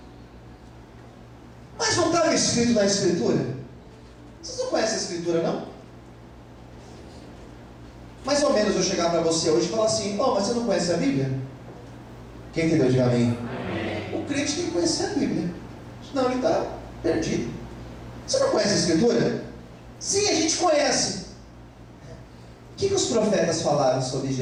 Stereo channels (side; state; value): both; identical; correlation 1.00